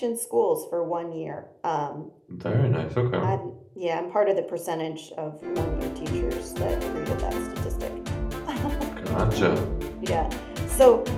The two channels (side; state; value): both; identical; correlation 1.00